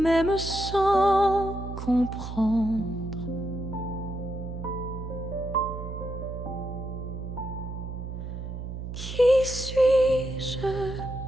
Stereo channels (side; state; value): right; noise; hum, 7 dB below the sound